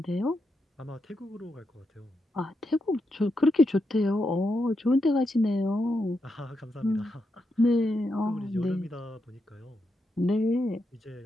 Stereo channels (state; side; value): normal; both; correlation 0.84